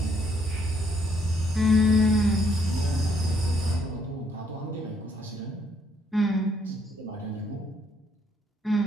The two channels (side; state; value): both; normal; correlation 0.69